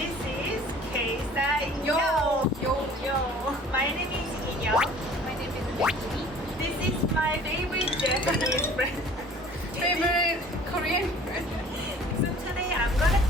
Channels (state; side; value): normal; both; correlation 0.49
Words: is KSTYLEYO. Yo. My name is Inyoung. My name is Becky. This is my favorite Japanese friend. Favorite Korean friend. So today I'm gonna